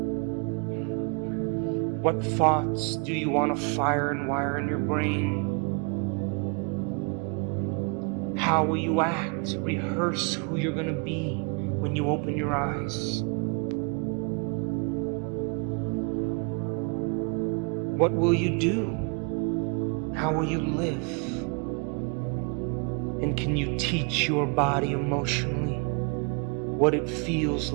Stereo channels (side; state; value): left; quieter; 35.2 dB